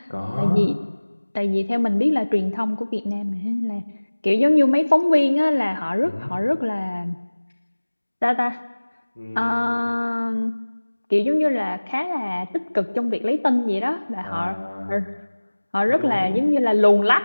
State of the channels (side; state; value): both; inverted; correlation -1.00